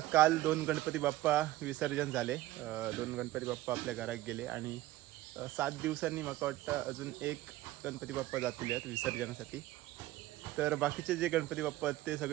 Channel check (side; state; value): left; quieter; 16.2 dB